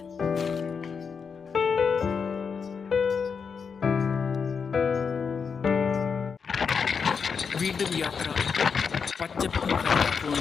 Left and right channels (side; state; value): right; quieter; 5.9 dB